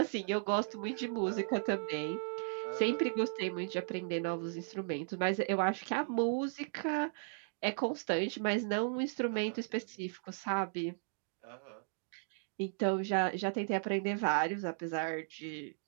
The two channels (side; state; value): left; silent; digital silence